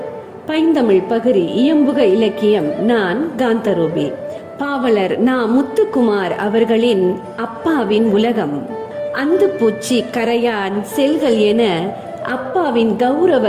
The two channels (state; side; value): identical; both; correlation 1.00